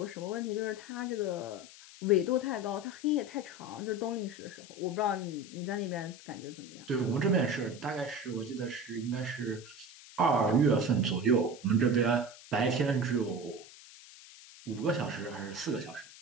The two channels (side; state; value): left; noise; hiss, 18 dB below the sound